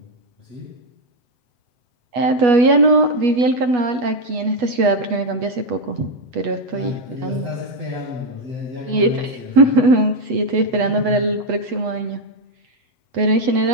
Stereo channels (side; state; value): left; late; 8.2 ms